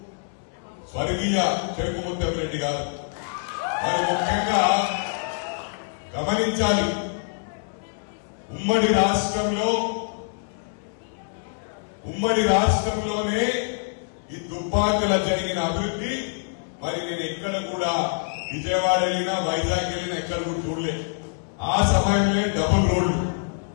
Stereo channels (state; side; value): silent; right; 62 dB below the other